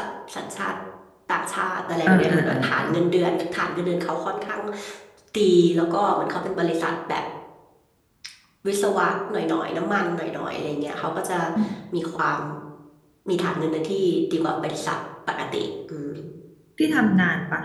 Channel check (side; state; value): both; identical; correlation 1.00